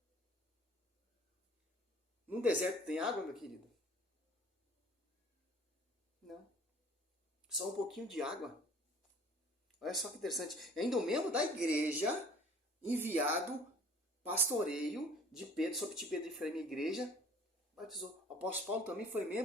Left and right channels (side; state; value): both; normal; correlation 0.50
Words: No deserto tem água, meu querido? Não. Só um pouquinho de água. Olha só que interessante. Ainda um membro da igreja, enviado, pastoreio de Pedro, sobre de Pedro e Efraim, igreja, batizou. O apóstolo Paulo também